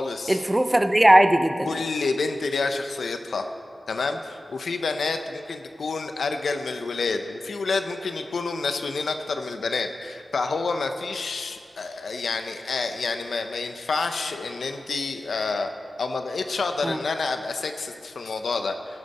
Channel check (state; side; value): normal; both; correlation 0.94